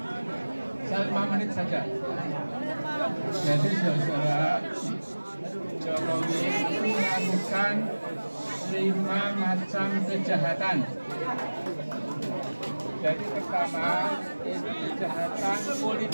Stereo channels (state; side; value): inverted; both; correlation -1.00